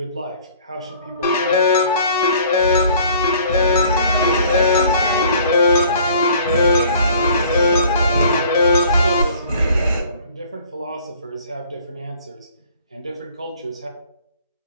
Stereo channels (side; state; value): both; inverted; correlation -0.54